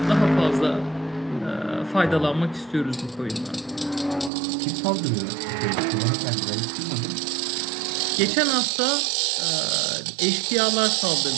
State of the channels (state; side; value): drops out; left; at 4.3 s